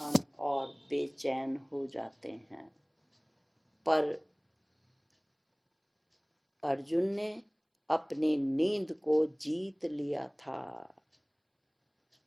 और बेचैन हो जाते हैं। पर अर्जुन ने अपनी नींद को जीत लिया था।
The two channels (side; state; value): both; identical; correlation 1.00